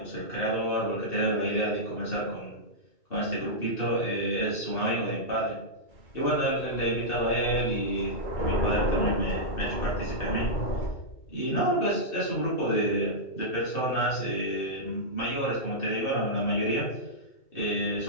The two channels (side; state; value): right; late; 2.6 ms